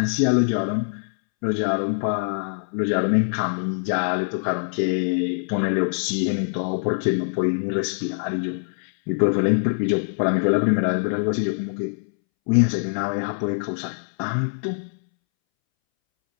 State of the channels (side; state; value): right; silent; 63 dB below the other